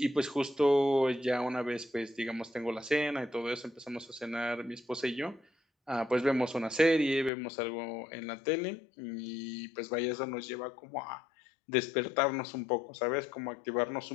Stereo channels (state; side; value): drops out; right; at 7.3 s